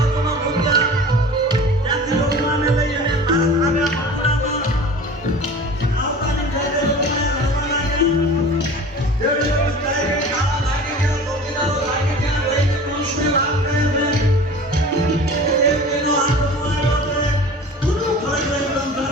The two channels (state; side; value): normal; both; correlation 0.39